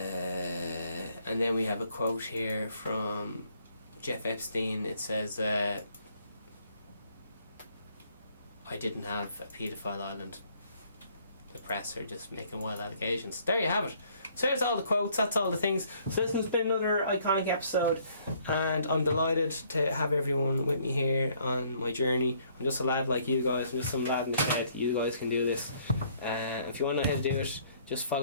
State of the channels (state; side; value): inverted; both; correlation -0.64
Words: And then we have a quote here from Jeff Epstein. It says, I didn't have a paedophile island. The press are just making wild allegations. There you have it. So there's all the quotes, that's all the things. So this has been another iconic episode, and I'm delighted to have everyone with me here on my journey. I'm just a lad like you guys, I'm just some lad in the shed. You guys can do this. If you want to know how to do it, just